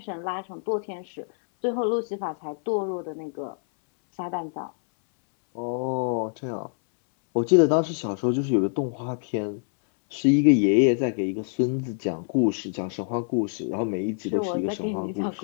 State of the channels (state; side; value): silent; right; 61 dB below the other